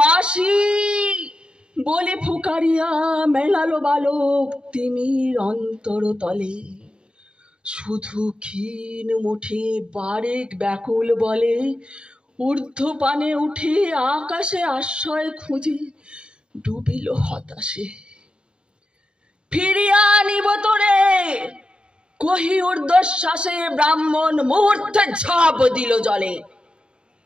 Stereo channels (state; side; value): late; left; 0.052 ms